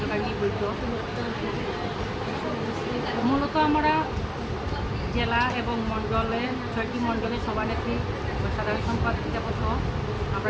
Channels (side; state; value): both; identical; correlation 1.00